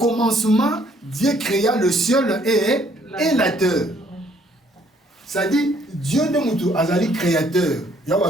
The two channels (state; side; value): normal; both; correlation 0.64